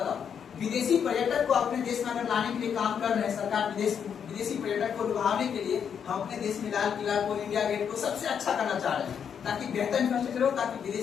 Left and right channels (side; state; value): right; quieter; 7.7 dB